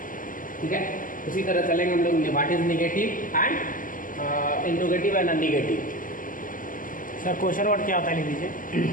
ठीक है, उसी तरह चलेंगे हम लोग what is negative and interrogative and unnegative. Sir question word क्या होता है, लिख दीजिए।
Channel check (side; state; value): right; late; 0.39 ms